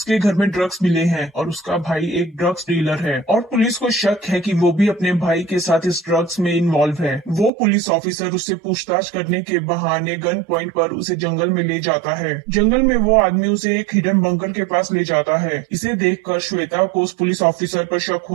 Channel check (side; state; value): left; drops out; at 7.5 s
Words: घर में ड्रग्स मिले हैं और उसका भाई एक ड्रग्स डीलर है और पुलिस को शक है कि वो भी अपने भाई के साथ इस ड्रग्स में इन्वॉल्व है। वो पुलिस ऑफिसर उससे पूछताछ करने के बहाने गन पॉइंट पर उसे जंगल में ले जाता है। जंगल में वो आदमी उसे एक हिडन बंकर के पास ले जाता है। इसे देखकर श्वेता को उस पुलिस ऑफिसर पर शक